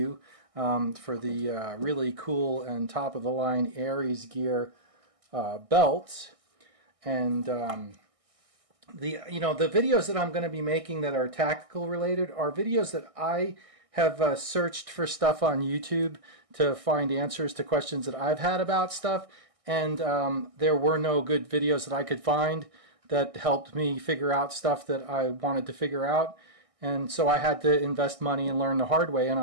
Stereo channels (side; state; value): left; late; 1.6 ms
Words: for the really cool and top-of-the-line Aegis gear belt. And the videos that I'm going to be making that are tactical related are videos that I have searched for stuff on YouTube to find answers to questions that I've had about stuff. And there were no good videos that I could find that helped me figure out stuff that I wanted to figure out. And so I had to invest money and learn the hard way, and